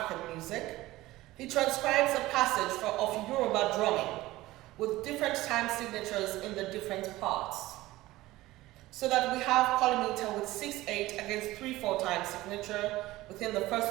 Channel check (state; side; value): quieter; left; 17.7 dB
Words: Music, he transcribes a passage of Yoruba drumming with different time signatures in the different parts, so that we have polymeter with 6/8 against 3/4 time signature within the